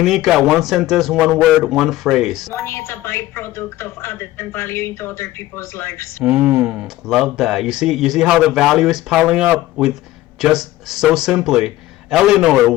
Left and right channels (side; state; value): right; quieter; 16.0 dB